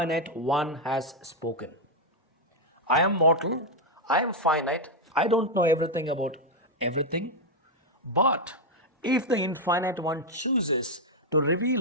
one has spoken. I am mortal, I am finite, I don't know everything about everything. But if the infinite one chooses to reveal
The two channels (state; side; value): normal; both; correlation 0.01